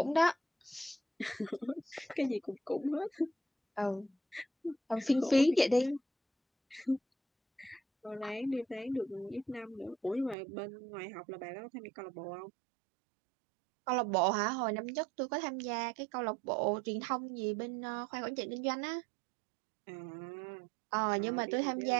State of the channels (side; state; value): left; drops out; at 10.4 s